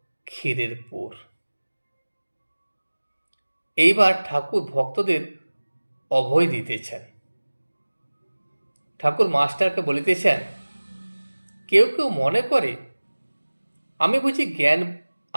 ক্ষীরের পোর। এইবার ঠাকুর ভক্তদের অভয় দিতেছেন। ঠাকুর মাস্টারকে বলিতেছেন, কেউ কেউ মনে করে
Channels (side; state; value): both; inverted; correlation -1.00